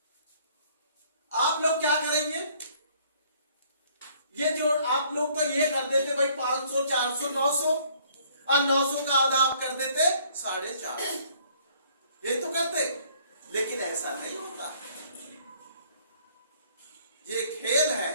आप लोग क्या करेंगे? ये जो आप लोग तो ये कर देते भाई 500, 400, 900, और 900 का आधा आप कर देते 450। ये तो करते, लेकिन ऐसा नहीं होता। ये खेल है।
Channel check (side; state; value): both; inverted; correlation -0.60